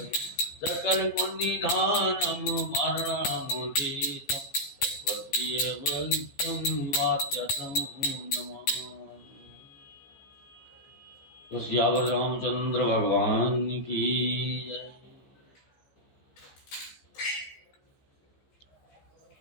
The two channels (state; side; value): late; right; 15 ms